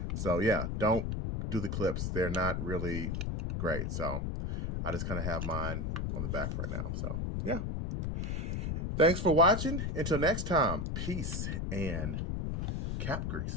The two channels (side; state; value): left; noise; rumble, 2 dB below the sound